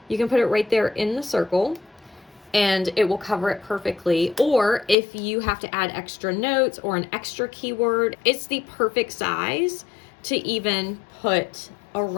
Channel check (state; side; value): drops out; right; at 5.0 s